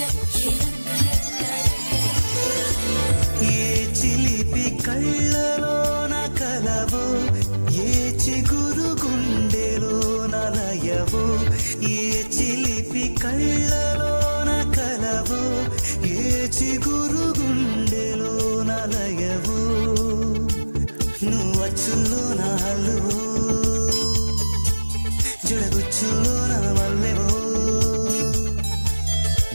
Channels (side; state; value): both; inverted; correlation -1.00